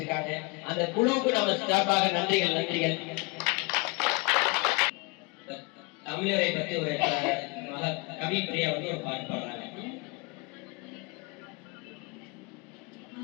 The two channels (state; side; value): quieter; right; 27.7 dB